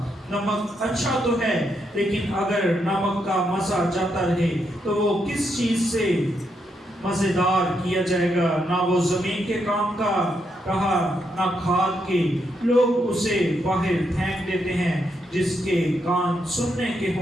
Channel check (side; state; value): both; normal; correlation 0.80